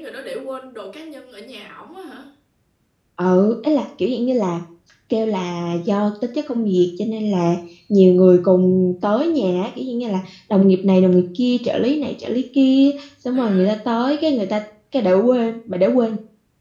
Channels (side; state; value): both; identical; correlation 1.00